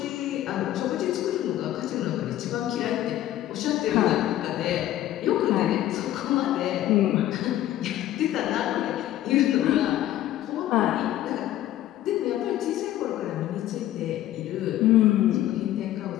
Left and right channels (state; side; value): quieter; right; 13.4 dB